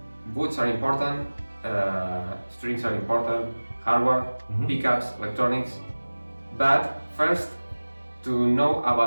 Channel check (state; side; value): inverted; both; correlation -1.00